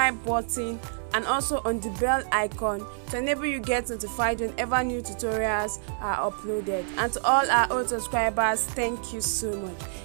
button and also on the bell icon to enable you get notified whenever new tutorials are uploaded. And to all our old subscribers, thank you so much.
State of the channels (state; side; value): silent; left; digital silence